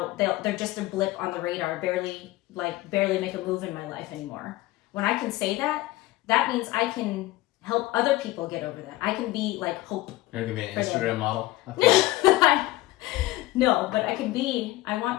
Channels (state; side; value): quieter; right; 17.8 dB